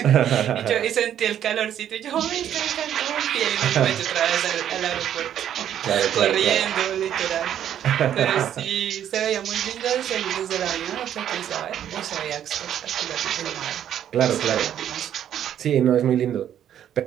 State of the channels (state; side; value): quieter; left; 10.2 dB